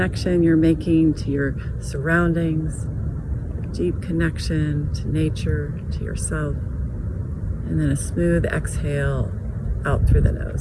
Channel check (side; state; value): both; identical; correlation 1.00